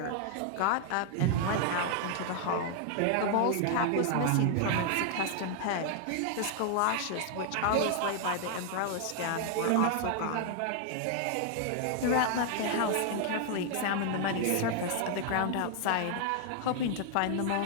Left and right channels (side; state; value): both; different; correlation 0.00